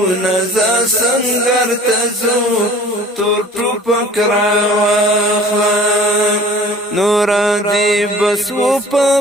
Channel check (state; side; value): normal; both; correlation 0.47